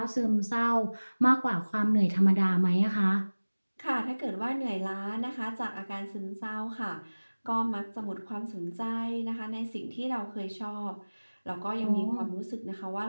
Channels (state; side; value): inverted; both; correlation -1.00